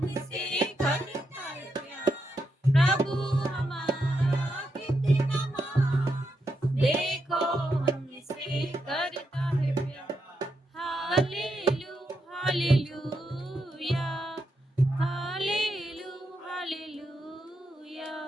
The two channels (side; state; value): both; normal; correlation 0.83